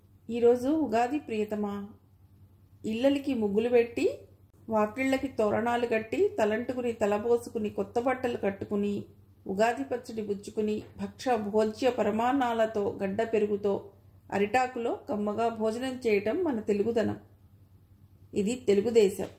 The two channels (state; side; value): identical; both; correlation 1.00